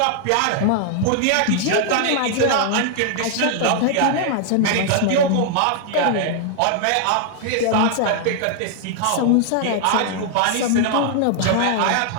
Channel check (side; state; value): both; different; correlation 0.00